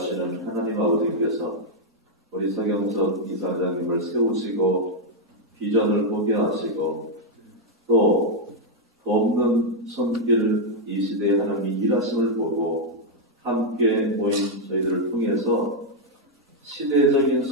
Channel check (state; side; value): normal; both; correlation -0.02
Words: 하나님 아버지께서 우리 서경석 이사장님을 세우시고 비전을 보게 하시고 또 돕는 손길을 이 시대에 하나님이 일하심을 보고 함께 모인 저희들을 통해서 시대적인